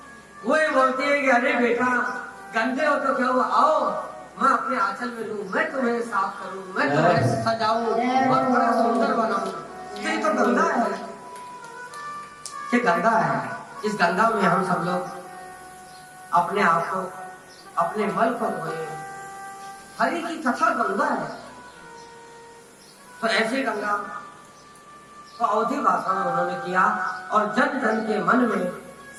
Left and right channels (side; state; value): both; identical; correlation 1.00